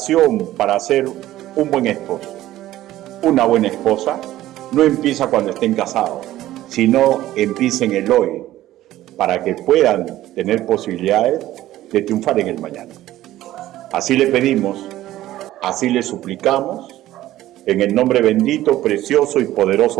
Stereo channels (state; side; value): quieter; left; 14.6 dB